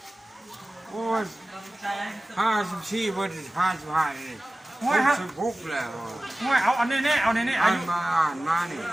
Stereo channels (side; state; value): both; normal; correlation 0.97